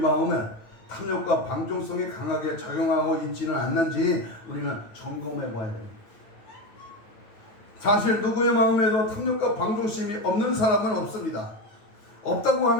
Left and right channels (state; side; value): late; right; 9.0 ms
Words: 탐욕과 방종성이 강하게 작용하고 있지는 않는지 우리는 점검해 봐야 됩니다. 사실 누구의 마음에도 탐욕과 방종심이 없는 사람은 없습니다. 없다고